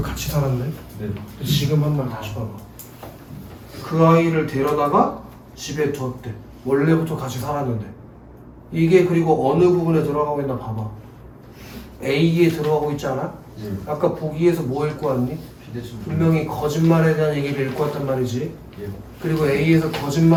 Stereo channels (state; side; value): identical; both; correlation 1.00